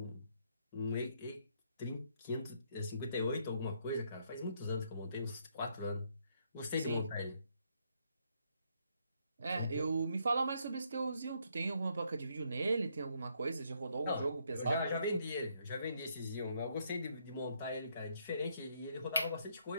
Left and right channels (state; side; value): inverted; both; correlation -0.73